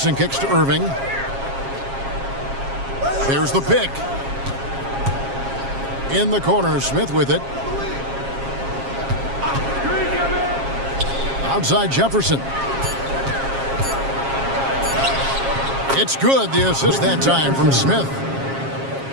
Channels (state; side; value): late; left; 7.4 ms